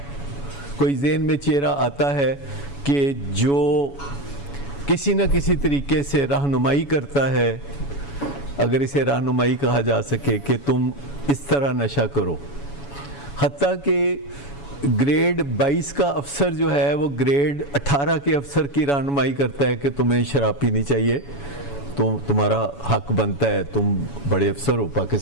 کوئی ذہن میں چہرہ آتا ہے کہ جو کسی نہ کسی طریقے سے رہنمائی کرتا ہے, اگر اسے رہنمائی کہا جا سکے, کہ تم اس طرح نشہ کرو. حتیٰ کہ گریڈ 22 کا افسر جو ہے وہ گریڈ 18 کے افسر کی رہنمائی کرتا ہے کہ تمہیں شراب پینی چاہیے, تمہارا حق بنتا ہے, تم بڑے افسر ہو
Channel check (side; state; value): right; late; 7.1 ms